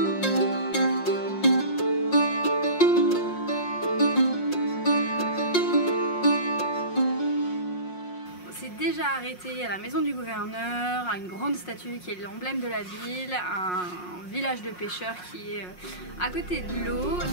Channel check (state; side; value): late; right; 5.6 ms